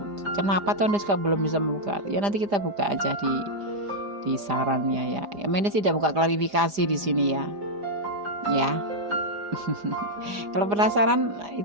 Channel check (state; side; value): late; left; 4.9 ms